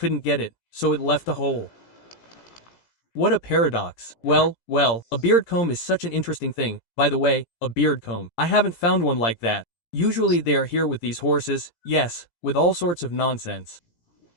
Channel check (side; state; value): right; late; 17 ms